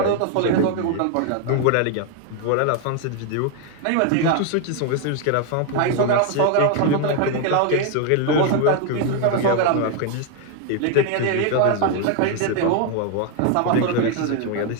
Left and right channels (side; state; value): both; different; correlation 0.01